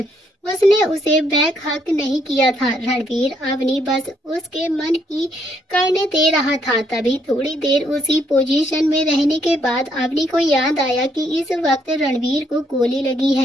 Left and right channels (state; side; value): normal; both; correlation 0.71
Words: उसने उसे बैक हक नहीं किया था। रणवीर अवनी बस उसके मन की करने दे रहा था। तभी थोड़ी देर उसी पोजीशन में रहने के बाद अवनी को याद आया कि इस वक्त रणवीर को गोली लगी